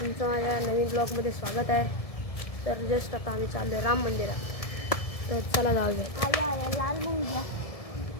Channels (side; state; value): right; late; 1.7 ms